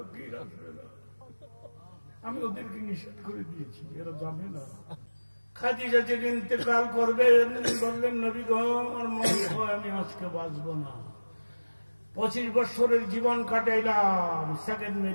আসবে না। আমি ওদেরকে নিষেধ করে দিয়েছি, এরা যাবে না। খাদিজা যেদিন ইন্তেকাল করবে বললেন, নবী গো আমার মনে হয় আমি আজকে বাঁচবো না। 25 বছরের জীবন কাটাইলাম, সেকেন্ড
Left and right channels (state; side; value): inverted; both; correlation -1.00